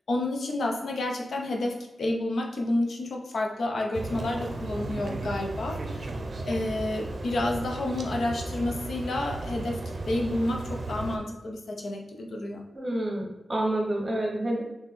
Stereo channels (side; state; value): both; normal; correlation 0.91